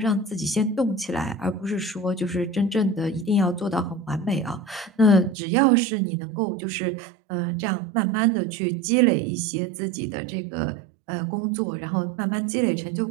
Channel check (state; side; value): drops out; left; at 5.4 s